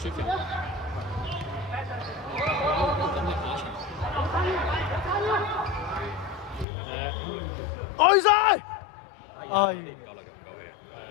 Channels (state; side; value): drops out; right; at 6.7 s